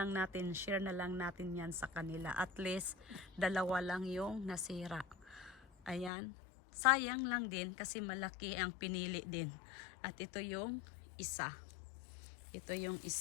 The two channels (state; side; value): drops out; right; at 6.1 s